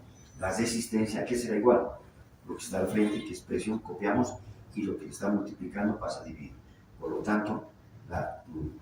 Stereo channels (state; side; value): identical; both; correlation 1.00